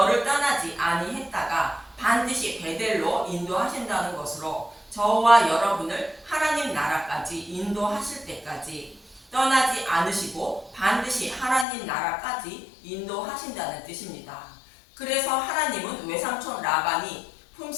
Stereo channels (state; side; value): drops out; right; at 11.7 s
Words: 떠나지 아니했다가 반드시 베델로 인도하신다는 것으로 저와 여러분을 하나님 나라까지 인도하실 때까지 떠나지 않으시고 반드시 하나님 나라까지 인도하신다는 뜻입니다. 그래서 하나님은 외삼촌 라반이